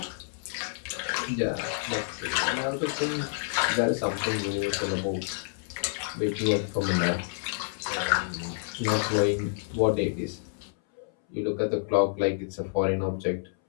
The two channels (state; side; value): silent; right; 59 dB below the other